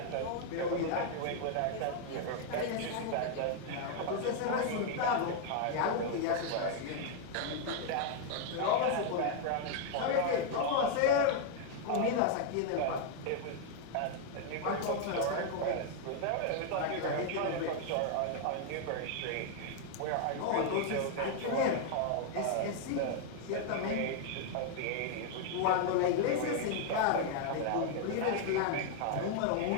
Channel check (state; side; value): different; both; correlation 0.00